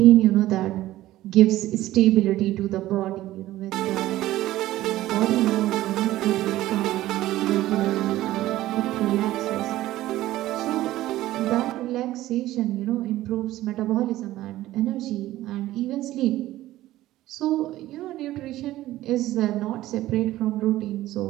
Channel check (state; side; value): quieter; left; 15.3 dB